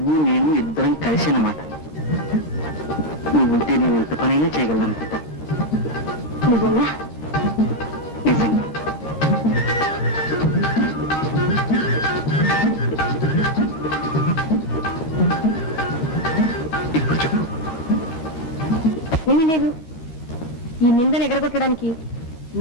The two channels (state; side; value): late; right; 13 ms